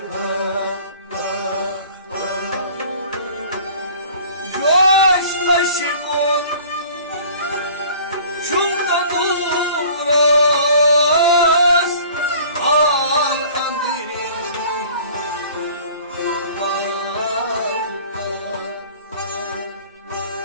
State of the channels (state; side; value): inverted; both; correlation -0.48